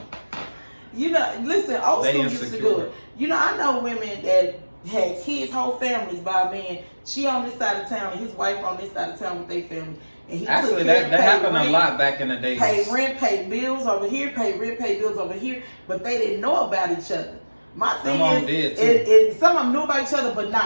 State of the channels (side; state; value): both; inverted; correlation -1.00